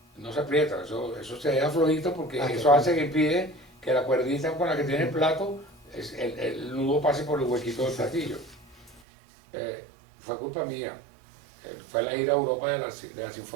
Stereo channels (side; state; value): left; drops out; at 9.0 s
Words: No se aprieta, eso se deja flojito porque eso hace que impide que la cuerdita con la que tiene el plato, el nudo pase por el huequito del platillo. Fue culpa mía. Fue la gira a Europa de la